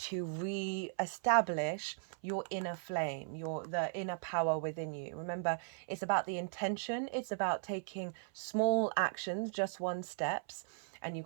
re-establish your inner flame, the inner power within you. Remember, it's about the intention. It's about taking small actions, just one steps. And you've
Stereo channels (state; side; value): silent; left; 53 dB below the other